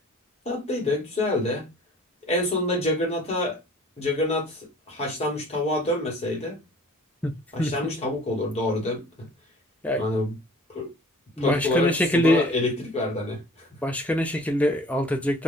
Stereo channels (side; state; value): both; normal; correlation 0.49